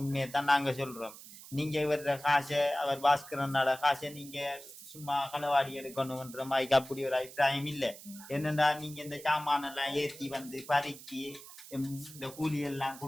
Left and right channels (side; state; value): right; noise; hiss, 16 dB below the sound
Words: தான் நாங்க சொல்றோம். நீங்க இவர காசை அவர் பாஸ்கரனோட காசை நீங்க சும்மா களவாடி எடுக்கணும்ன்ற மாதிரி அப்படி ஒரு அபிப்பிராயம் இல்லை. என்னடா நீங்க இந்த சாமானெல்லாம் ஏற்றி வந்து பறிச்சு இந்த கூலி எல்லாம்